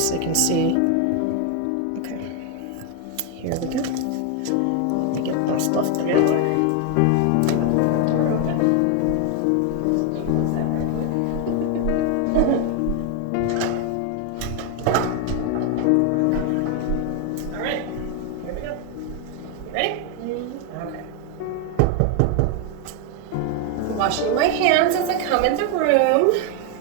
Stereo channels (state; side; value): different; both; correlation 0.01